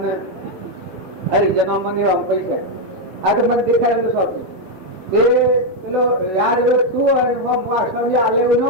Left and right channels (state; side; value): late; left; 16 ms